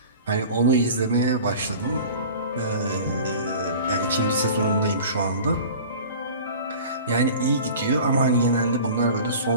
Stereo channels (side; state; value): both; inverted; correlation -0.41